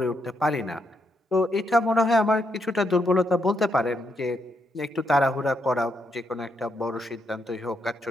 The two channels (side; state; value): both; normal; correlation 0.79